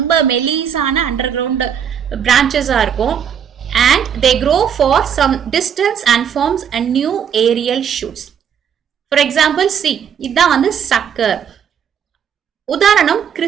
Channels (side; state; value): left; quieter; 8.1 dB